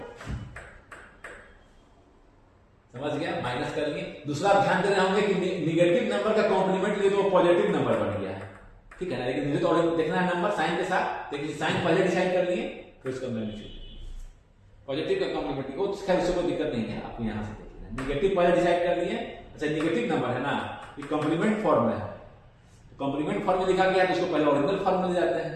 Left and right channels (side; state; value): both; identical; correlation 1.00